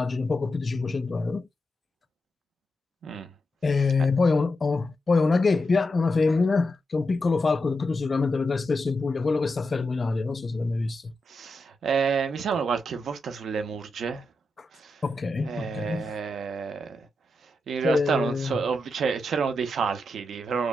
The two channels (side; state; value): both; normal; correlation 0.87